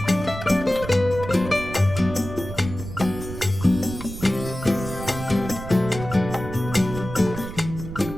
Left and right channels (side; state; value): right; noise; rumble, 10 dB below the sound